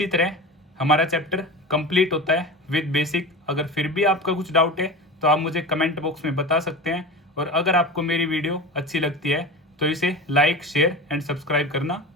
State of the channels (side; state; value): both; normal; correlation 0.29